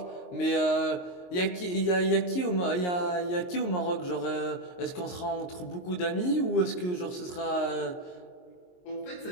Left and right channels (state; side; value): late; right; 22 ms